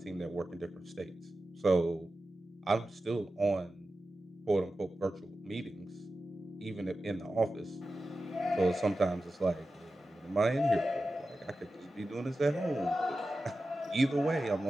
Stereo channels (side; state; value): both; normal; correlation 0.93